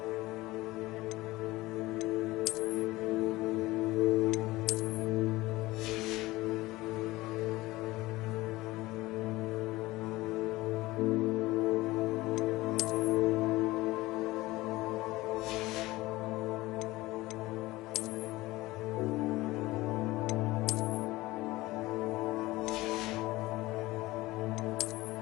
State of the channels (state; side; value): quieter; right; 19.3 dB